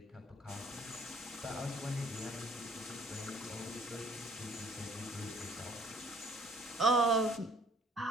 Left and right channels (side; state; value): both; normal; correlation 0.58